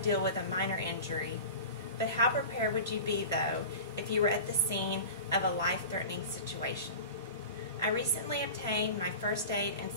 with a minor injury, but how prepared would you be, though, if you were at the scene of a life-threatening situation? I recently obtained my First Aid and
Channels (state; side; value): inverted; both; correlation -0.34